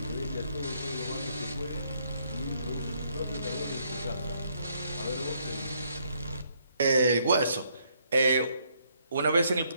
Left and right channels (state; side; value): inverted; both; correlation -0.71